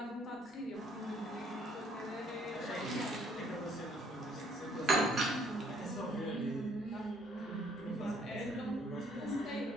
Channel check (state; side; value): normal; both; correlation 0.63